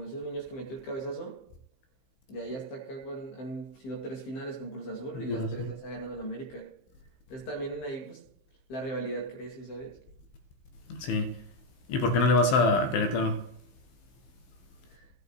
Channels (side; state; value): right; late; 15 ms